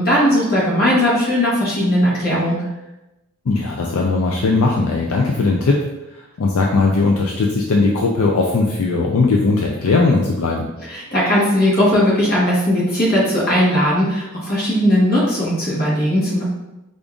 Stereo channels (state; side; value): normal; both; correlation 0.57